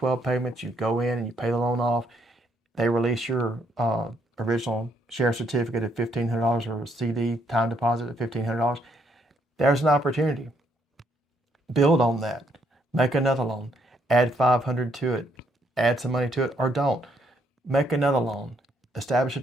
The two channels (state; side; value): normal; both; correlation 0.72